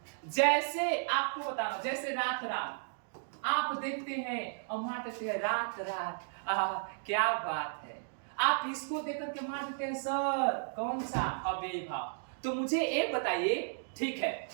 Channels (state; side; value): silent; left; digital silence